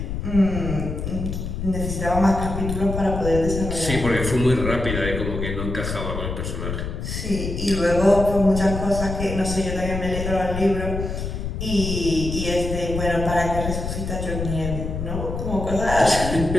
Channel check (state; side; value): noise; left; rumble, 4 dB below the sound